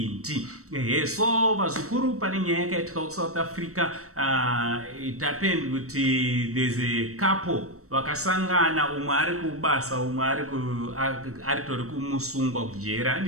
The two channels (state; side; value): late; left; 0.64 ms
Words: ndi so vazukuru pane nyaya yakaitika ku South Africa. It happened kuti there's a couple vakasangana, umwe ari kubasa, umwe ari tori kumusungwa kujera